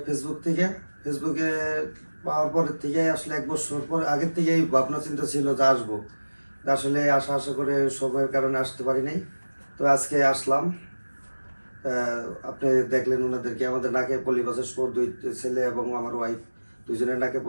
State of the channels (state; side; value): inverted; both; correlation -1.00